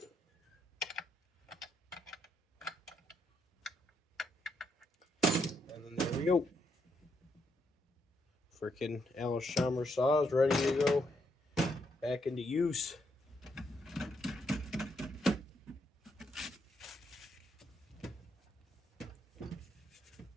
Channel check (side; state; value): both; normal; correlation 0.77